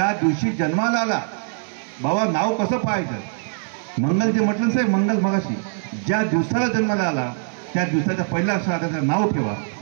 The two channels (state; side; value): silent; left; 64 dB below the other